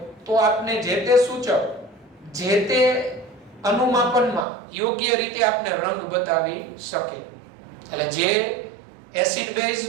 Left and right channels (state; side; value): drops out; left; at 4.5 s